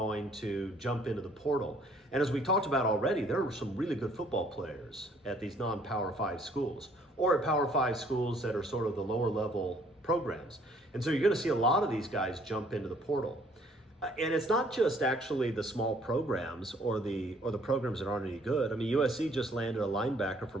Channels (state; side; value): normal; both; correlation 0.61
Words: to jump into the portal. And as we talked about already, there are some really good football players at these non-Power 5 schools, or at Power 5 schools that are sort of the lower level programs. And so you're going to see a lot of these guys jump into the portal. And it's not just actually the small programs or the programs that aren't any good. I mean, USC just landed a linebacker